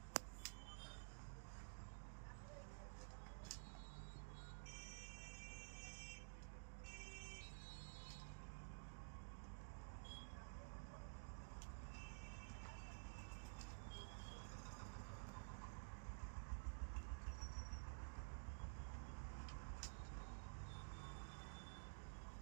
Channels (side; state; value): left; silent; digital silence